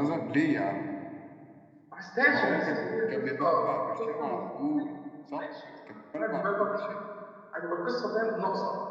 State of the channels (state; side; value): identical; both; correlation 1.00